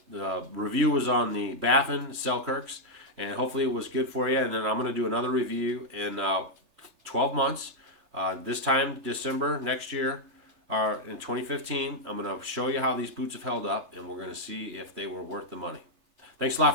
The review was on the Baffin Selkirks, and hopefully it was good for you. And then I'm going to do another review in 12 months. This time, December next year, or in 2015, I'm going to show you how these boots have held up, and we're going to see if they were worth the money. Thanks a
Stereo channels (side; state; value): left; late; 3.3 ms